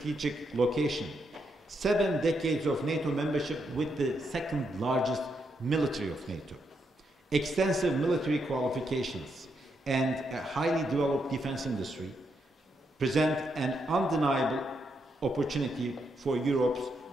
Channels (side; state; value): both; normal; correlation 0.80